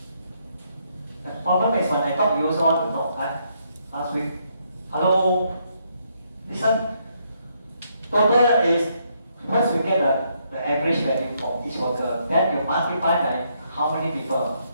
The problem is when I talk, you also want to talk. Last week, hello, listen. Total is, first you get the average value for each worker, then you multiply by how many people.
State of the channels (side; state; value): both; inverted; correlation -0.74